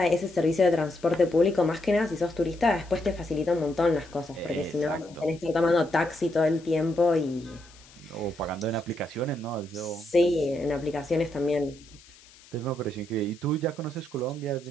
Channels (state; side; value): noise; left; hiss, 24 dB below the sound